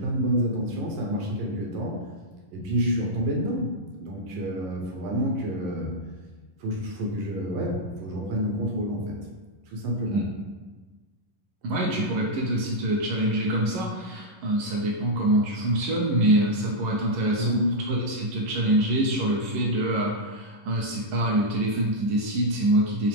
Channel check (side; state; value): left; late; 11 ms